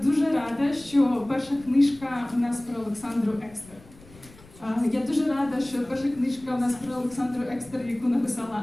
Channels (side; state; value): left; noise; rumble, 23 dB below the sound